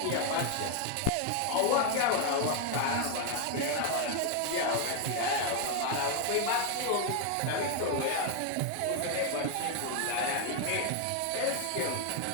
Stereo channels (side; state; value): both; different; correlation 0.01